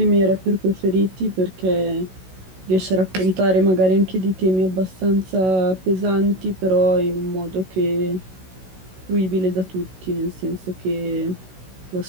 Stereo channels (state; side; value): late; left; 16 ms